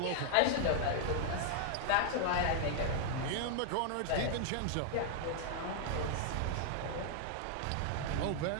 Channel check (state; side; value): different; both; correlation 0.00